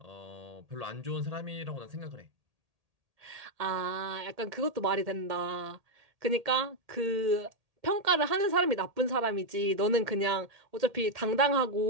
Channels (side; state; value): left; late; 1.8 ms